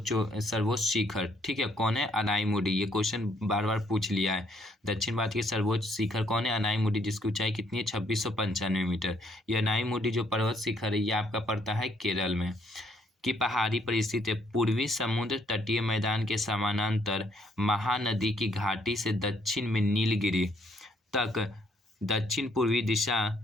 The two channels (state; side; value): normal; both; correlation 0.68